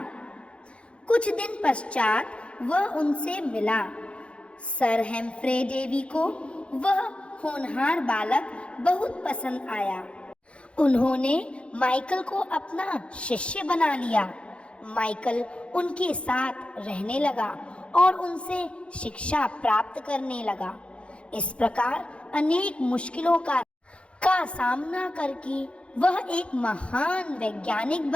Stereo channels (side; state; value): right; late; 0.059 ms